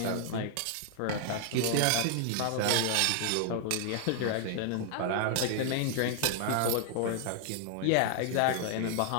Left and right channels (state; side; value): different; both; correlation 0.00